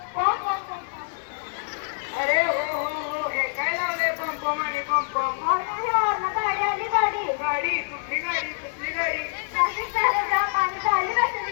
पम पम पम पम। अरे हो हे काय लावले पम पम आणि पम पम। गाडी आली गाडी गाडी कुठली गाडी कुठली गाडी। ट्रॅफिक झाले जाम आणि झाली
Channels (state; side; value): silent; right; digital silence